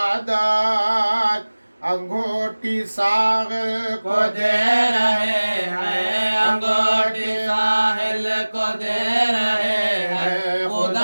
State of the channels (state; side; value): inverted; both; correlation -1.00